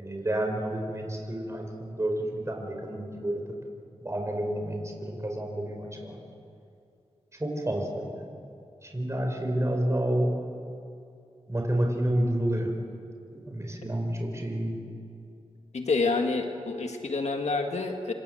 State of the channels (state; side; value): normal; both; correlation 0.84